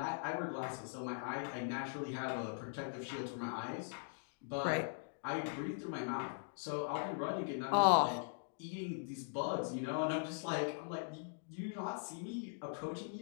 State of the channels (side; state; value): right; silent; digital silence